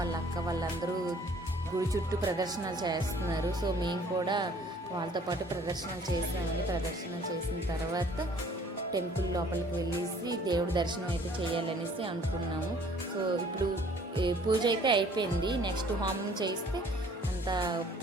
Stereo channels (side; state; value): both; normal; correlation 0.56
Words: అక్క వాళ్ళందరూ గుడి చుట్టూ ప్రదర్శనలు చేస్తున్నారు. సో మేము కూడా వాళ్ళతో పాటు ప్రదర్శనలు చేసామని. ప్రదర్శనలు చేసిన తర్వాత టెంపుల్ లోపలికి వెళ్ళేసి దేవుడి దర్శనం అయితే చేయాలనేసి అనుకున్నాము. సో ఇప్పుడు పూజ అయితే అయిపోయింది. నెక్స్ట్ హోమం చేస్తే అంతా